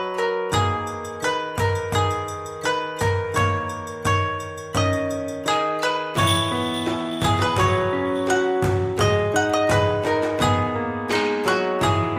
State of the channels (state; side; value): identical; both; correlation 1.00